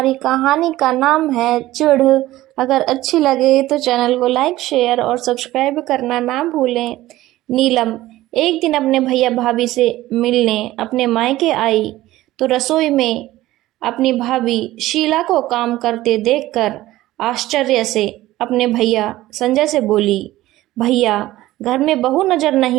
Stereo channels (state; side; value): quieter; left; 16.2 dB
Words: कहानी का नाम है चिढ़। अगर अच्छी लगे तो चैनल को लाइक शेयर और सब्सक्राइब करना ना भूलें। नीलम एक दिन अपने भैया भाभी से मिलने अपने मायके आई तो रसोई में अपनी भाभी शीला को काम करते देखकर आश्चर्य से अपने भैया संजय से बोली, भैया घर में बहू नजर